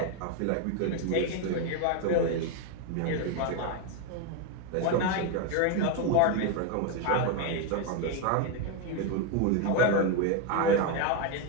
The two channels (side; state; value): both; different; correlation 0.02